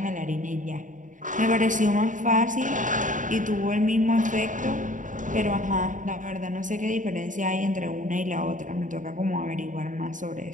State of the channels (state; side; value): late; left; 0.37 ms